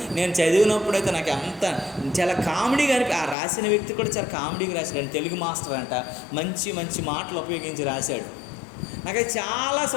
నేను చదివినప్పుడైతే నాకు అంత చాలా కామెడీగా ఆ రాసిన వ్యక్తి కూడా చాలా కామెడీగా రాశాడు. తెలుగు మాస్టర్ అంట, మంచి మంచి మాటలు ఉపయోగించి రాశాడు. నాకు చాలా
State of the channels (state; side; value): drops out; right; at 3.4 s